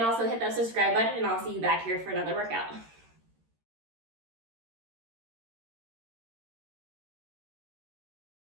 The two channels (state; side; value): late; left; 13 ms